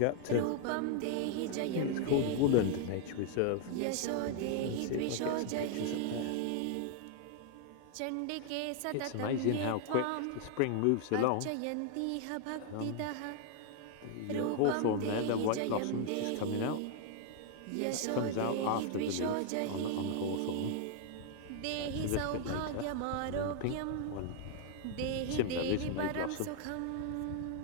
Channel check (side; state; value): both; different; correlation 0.00